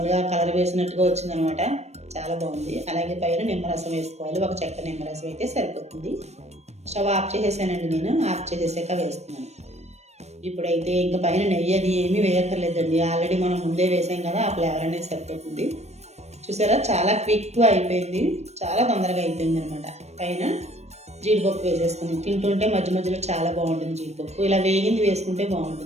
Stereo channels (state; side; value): late; left; 0.32 ms